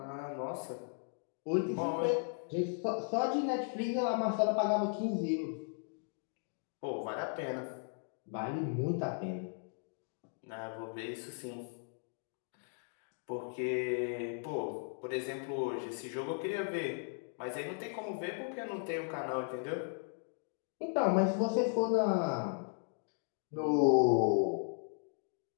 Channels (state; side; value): silent; right; 53 dB below the other